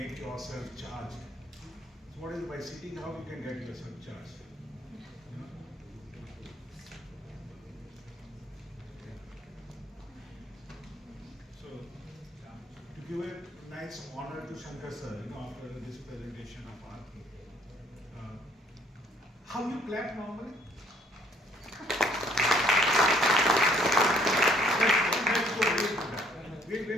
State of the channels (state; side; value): normal; both; correlation 0.62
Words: yourself charged. So what is it, by sitting how you can get yourself charged? So to give a nice honor to Shankar sir, after this presentation of Aarti. How you clap normally? Let's go away from that.